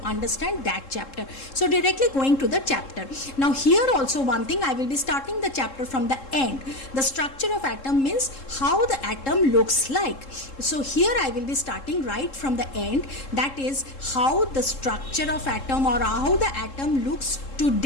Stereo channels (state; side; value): late; right; 3.7 ms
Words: understand that chapter. So directly going to the chapter. Now here also one thing, I will be starting the chapter from the end. The structure of atom means how the atom looks like. So here I will be starting right from the end. That is how the structure of atom or how the atom looks